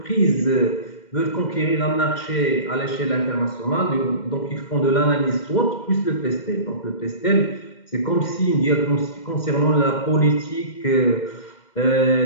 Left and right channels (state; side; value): late; right; 2.1 ms